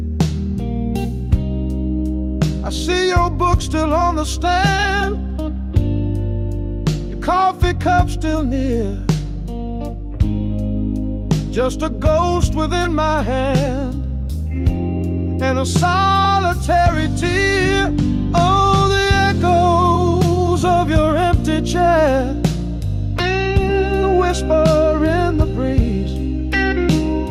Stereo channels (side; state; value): both; identical; correlation 1.00